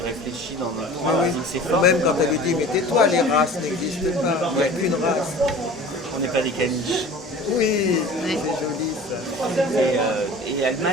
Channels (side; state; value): both; normal; correlation 0.41